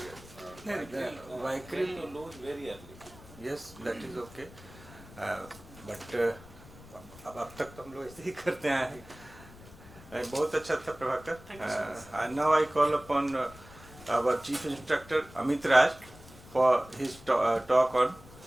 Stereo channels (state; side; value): noise; left; rumble, 20 dB below the sound